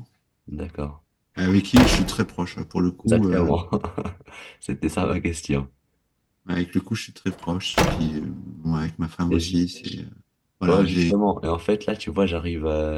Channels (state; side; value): identical; both; correlation 1.00